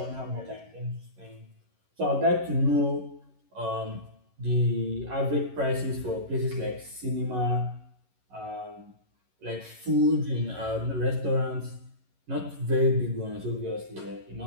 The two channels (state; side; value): late; left; 11 ms